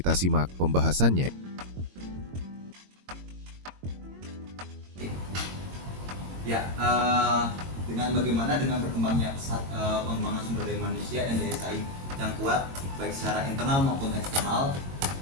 simak pembahasannya. Ya, dengan berkembangnya pesat pengembangan sumber daya manusia dan daya saing yang kuat baik secara internal maupun eksternal,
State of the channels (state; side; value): late; left; 22 ms